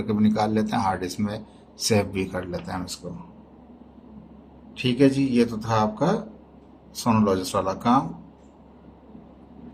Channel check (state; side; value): identical; both; correlation 1.00